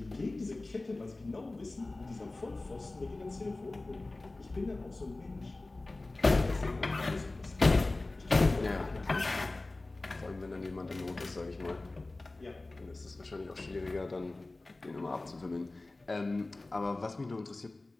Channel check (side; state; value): right; quieter; 3.0 dB